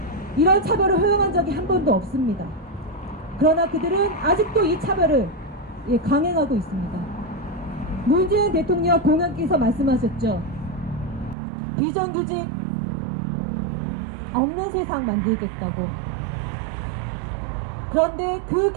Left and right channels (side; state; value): left; drops out; at 11.4 s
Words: 이런 차별을 허용한 적이 한 번도 없습니다. 그러나 그들은 아직도 이 차별을 강행하고 있습니다. 문재인 대통령 공약에서 말씀하셨죠. 비정규직 없는 세상 만들겠다고. 그런데 그